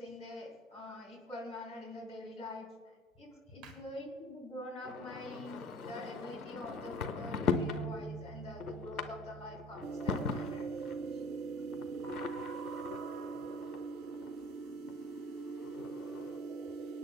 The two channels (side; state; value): both; normal; correlation 0.47